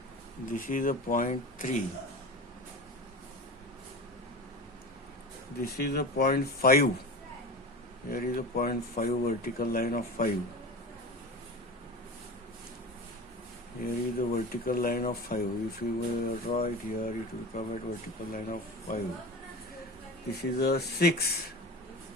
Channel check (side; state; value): both; normal; correlation 0.31